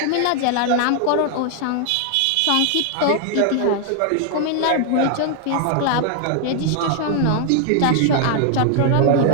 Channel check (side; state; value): both; different; correlation 0.00